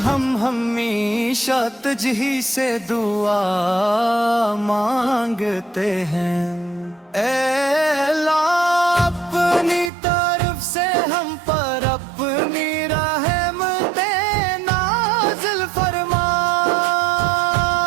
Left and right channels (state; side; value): drops out; left; at 9.9 s